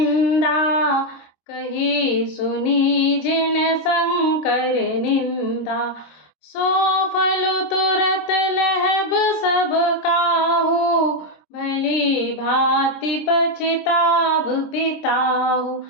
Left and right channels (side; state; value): right; late; 26 ms